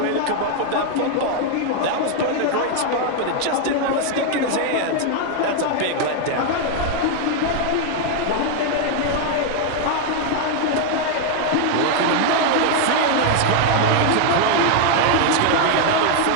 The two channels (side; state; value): both; different; correlation 0.00